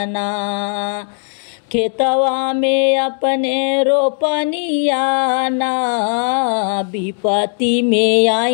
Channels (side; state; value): right; silent; 56 dB below the other